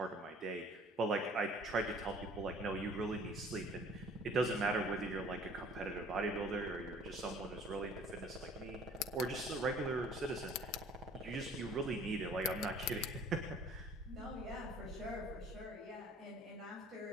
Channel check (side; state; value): both; normal; correlation 0.52